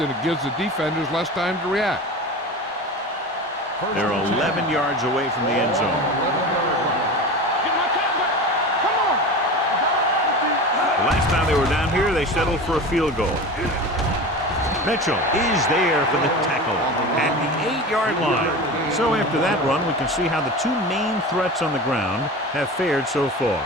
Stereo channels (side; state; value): both; normal; correlation 0.30